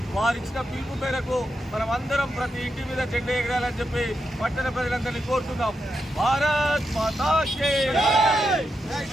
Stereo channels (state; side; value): normal; both; correlation 0.85